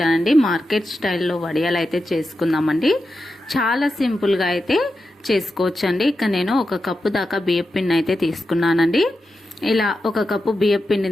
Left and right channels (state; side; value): normal; both; correlation 0.89